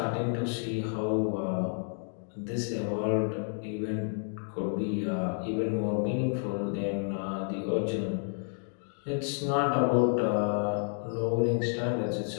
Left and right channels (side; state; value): right; silent; 57 dB below the other